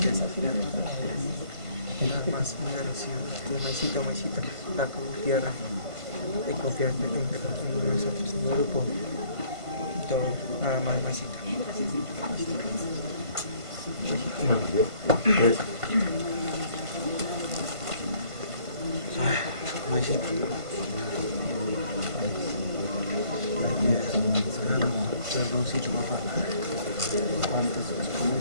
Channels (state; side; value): late; left; 1.5 ms